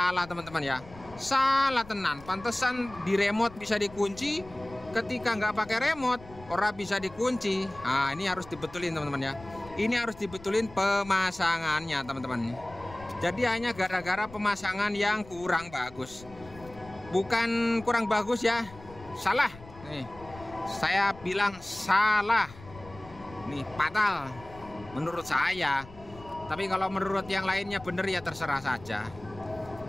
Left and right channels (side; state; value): left; noise; rumble, 19 dB below the sound